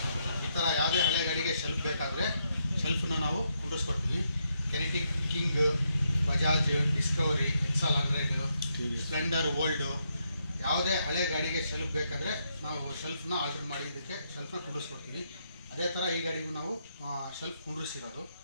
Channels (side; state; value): both; inverted; correlation -0.79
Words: ಈ ಥರ ಯಾವುದೇ ಹಳೆ ಗಾಡಿಗೆ ಶೆಲ್ಫ್ ಬೇಕಾದರೆ ಶೆಲ್ಫನ್ನ ನಾವು ಕುಂಡ್ರಿಸ್ಕೊಡ್ತೀವಿ. Kinetic King, Bajaj, Discovery, XL 100, Splendor, old, ಯಾವುದೇ ಹಳೆ ಗಾಡಿಗೆ ಶೆಲ್ಫ್ ಬೇಕಾದರೆ ನಾವು ಶೆಲ್ಫನ್ನ ಆರ್ಡರ್ ಮಾಡಿ ಇದಕ್ಕೆ ಶೆಲ್ಫನ್ನ ಕುಂಡ್ರಿಸ್ಕೊಡ್ತೀವಿ. ಅದೇ ಥರ ಈ ಗಾಡಿಗೂ ನಾವು ಶೆಲ್ಫ್ ಕುಂಡ್ರಿಸಿರೋದು.